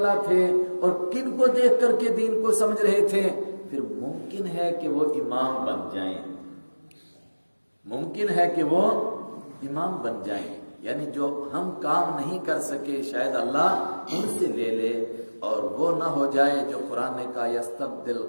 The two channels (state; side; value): inverted; both; correlation -1.00